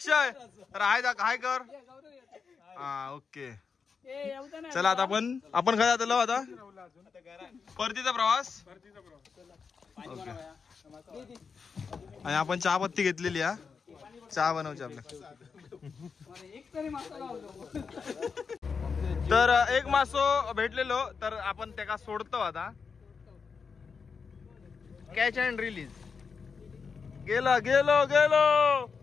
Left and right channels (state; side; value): quieter; right; 5.6 dB